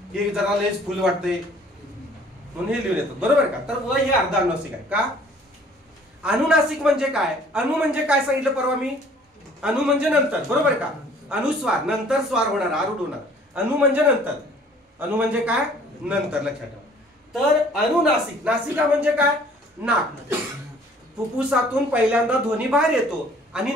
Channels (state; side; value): normal; both; correlation 0.55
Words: हे जरा लयच फुल वाटतंय म्हणून हे लिहून येतात. बरोबर का? तर व हे अर्ध अनुनासिक आहे का? अनुनासिक म्हणजे काय? अनु म्हणजे काय सांगितलं परवा मी? अनु म्हणजे नंतर. बरोबर का? अनुस्वार, नंतर स्वार होणार, आरूढ होणार. अनु म्हणजे नंतर. अनु म्हणजे काय? नंतर. लक्षात ठेवा. तर अनुनासिक, नासिका म्हणजे काय? नाक. फुफ्फुसातून पहिल्यांदा ध्वनी बाहेर येतो आणि